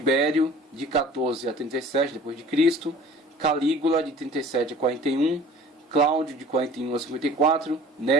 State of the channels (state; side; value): normal; both; correlation 0.46